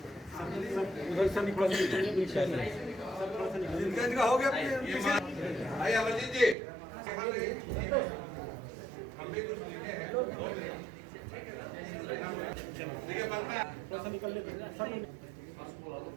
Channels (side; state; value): left; drops out; at 6.6 s